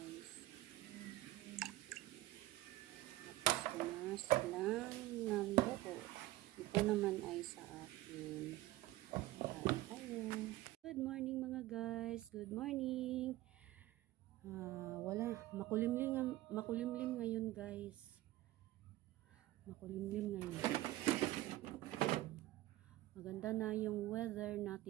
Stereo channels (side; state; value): left; quieter; 16.8 dB